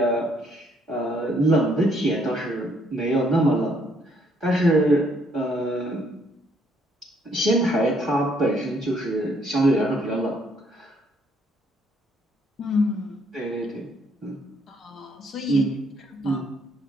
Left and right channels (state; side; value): normal; both; correlation 0.68